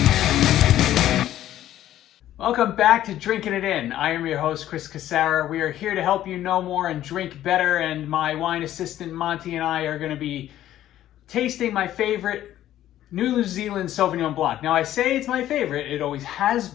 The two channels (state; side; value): quieter; right; 12.7 dB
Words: Welcome back to Drinking It In. I am your host, Chris Casara. We are here to help you know more and drink better, and my wine assistant, Monty, and I are going to be tasting my favorite New Zealand Sauvignon Blanc. Now, I say it's my favorite. It always has